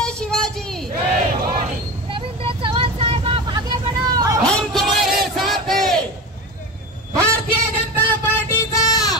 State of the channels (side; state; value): both; normal; correlation 0.26